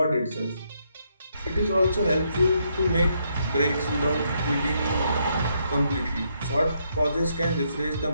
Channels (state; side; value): inverted; both; correlation -0.75